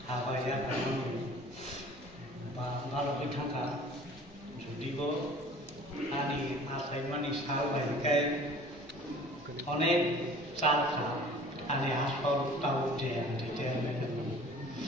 apa ya kamu kalau kita kan jadi kok ani asal manis hal bagai অনেক চাল খা ani aspal tahu dia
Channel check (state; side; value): normal; both; correlation 0.47